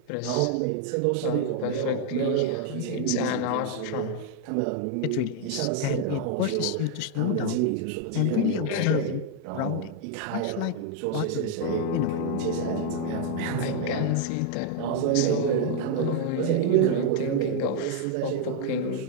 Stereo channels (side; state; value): both; different; correlation 0.00